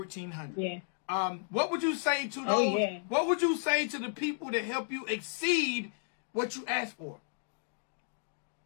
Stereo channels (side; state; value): right; silent; digital silence